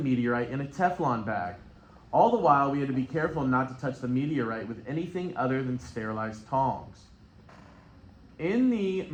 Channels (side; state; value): both; identical; correlation 1.00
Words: in a Teflon bag. All the while, we had to be careful not to touch the meteorite with anything other than sterilized tongs. In the